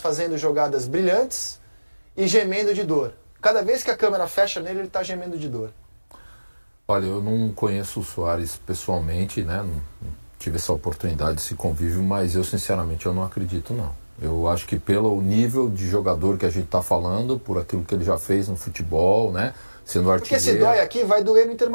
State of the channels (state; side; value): inverted; both; correlation -1.00